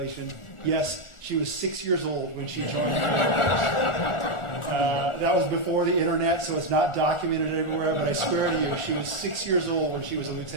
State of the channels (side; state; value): right; late; 1.4 ms